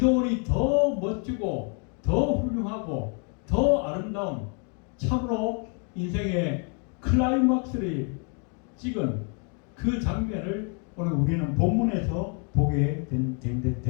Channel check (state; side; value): quieter; right; 39.2 dB